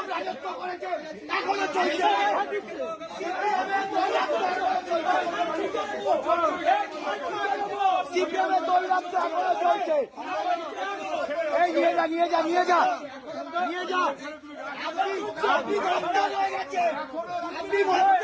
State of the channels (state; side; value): identical; both; correlation 1.00